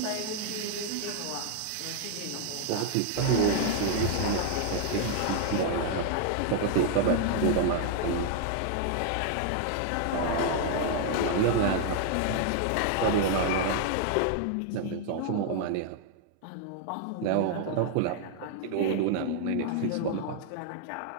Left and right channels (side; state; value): both; different; correlation 0.00